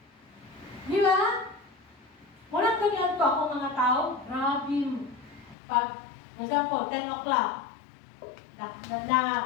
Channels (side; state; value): right; drops out; at 5.6 s